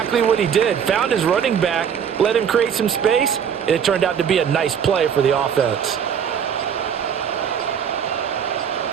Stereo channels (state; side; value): quieter; left; 7.9 dB